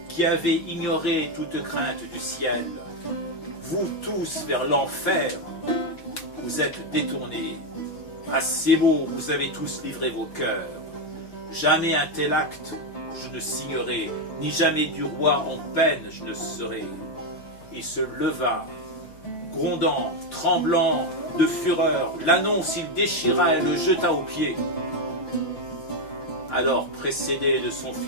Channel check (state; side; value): late; right; 5.9 ms